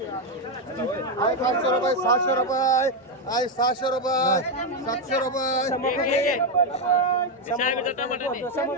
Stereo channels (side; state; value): both; normal; correlation 0.05